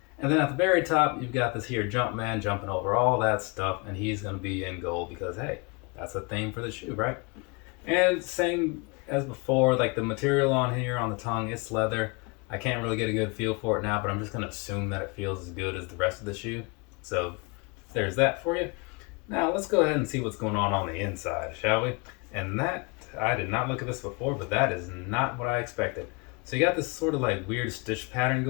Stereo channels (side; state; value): right; quieter; 30.2 dB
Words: And then at the very top, you've got this here Jumpman jumping over all that stuff, and he's going to be in gold because, hey, that's a theme for the shoe, right? And same as before, like the material on here on the tongue, it's leather. I can't really get a good feel for it now, but I'm just going to assume that it feels as good as the rest of the shoe. So there's that for you. Now let's go ahead and see what's going on the inside, shall we? And that, I did not look at this before, but that is not what I expected. So you got this sort of like weird stitch pattern